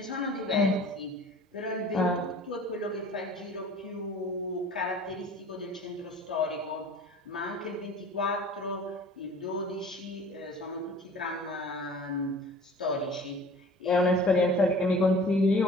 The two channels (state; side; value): normal; both; correlation 0.45